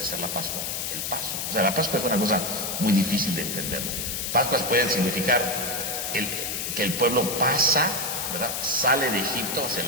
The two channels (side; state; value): left; noise; hiss, 3 dB below the sound